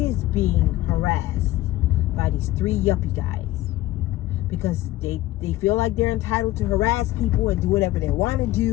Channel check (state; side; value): quieter; right; 16.6 dB